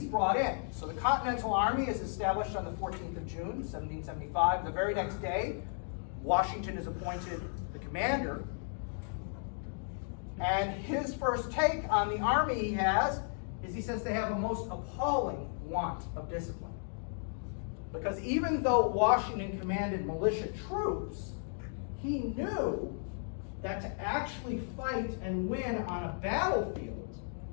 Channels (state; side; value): silent; right; 55 dB below the other